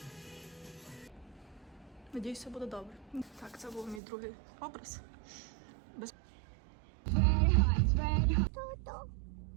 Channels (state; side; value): drops out; left; at 4.0 s